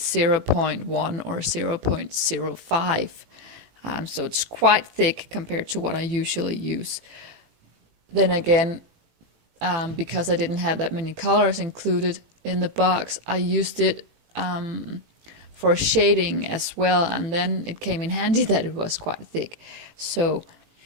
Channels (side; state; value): left; late; 18 ms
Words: or 0.05. So it's quite thick compared to what I usually use. Then again, because I didn't have that many colors included in the box, I used it for shading as well, and then it came in handy that it was quite thick. So